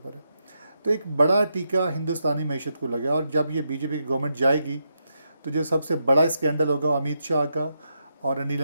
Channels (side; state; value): both; inverted; correlation -0.83